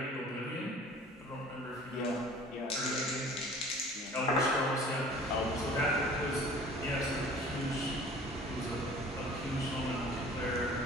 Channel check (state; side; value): normal; both; correlation 0.47